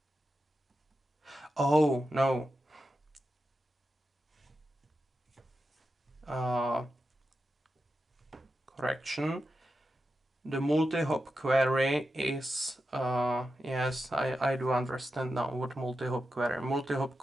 Oh, no. Correction. The multi-hop query is, yes, I do understand now what multi-hop query. Multi-hop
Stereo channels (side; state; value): both; normal; correlation 0.89